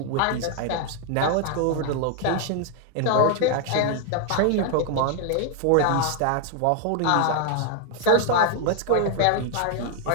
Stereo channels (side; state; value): both; different; correlation 0.00